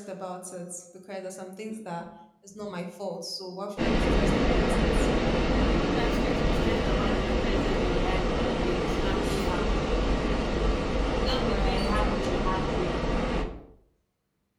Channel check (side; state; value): both; identical; correlation 1.00